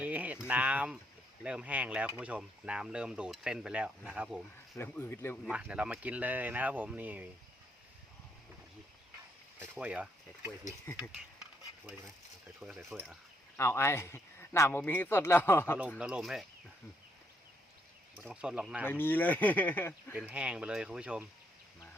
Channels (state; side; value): normal; both; correlation 0.74